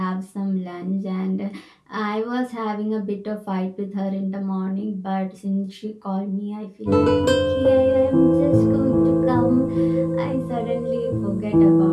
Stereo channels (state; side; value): identical; both; correlation 1.00